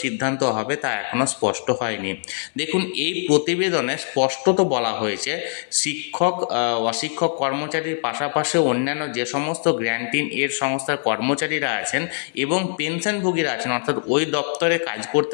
সিদ্ধান্ত হবে তা এখনও স্পষ্ট হয়নি। দেখুন, এই প্রতিবেদনে স্পষ্টত বলা হয়েছে, শিক্ষক, অশিক্ষক কর্মচারীর পাশাপাশি অন্যান্য যে সমস্ত গ্র্যান্টিন এড সংস্থার কর্মচারীরা আছেন এবং পেনশনভোগীরা আছেন, অর্থাৎ ওই দপ্তরে কাজ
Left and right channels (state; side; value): silent; right; digital silence